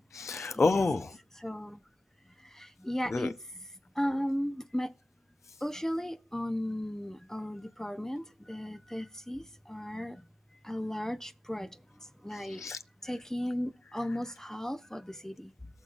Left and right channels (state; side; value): normal; both; correlation 0.96